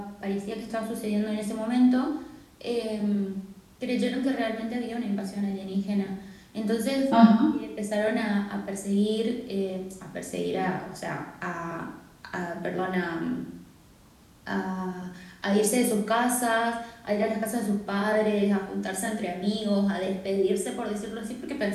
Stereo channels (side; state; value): both; identical; correlation 1.00